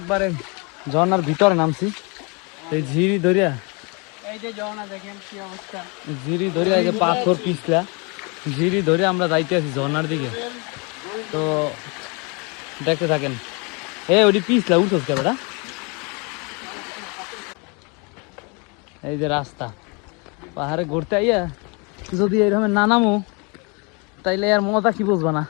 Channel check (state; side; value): quieter; right; 31.4 dB